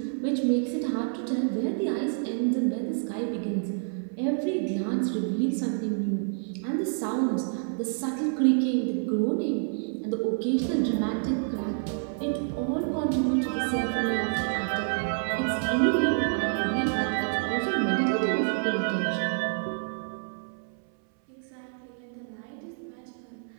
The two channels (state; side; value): silent; left; 59 dB below the other